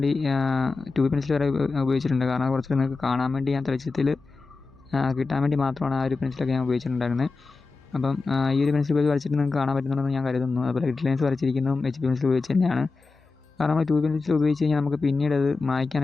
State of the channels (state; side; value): quieter; right; 4.0 dB